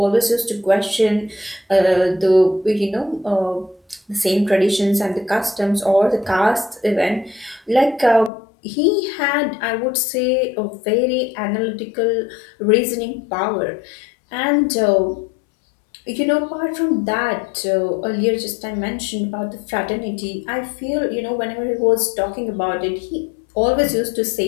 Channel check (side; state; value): right; drops out; at 8.3 s